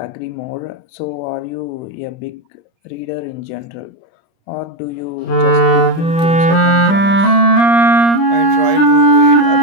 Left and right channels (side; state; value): right; late; 30 ms